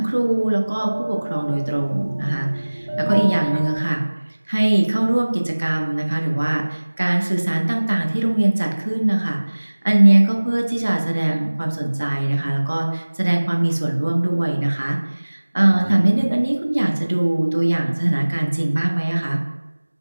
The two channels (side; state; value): both; inverted; correlation -1.00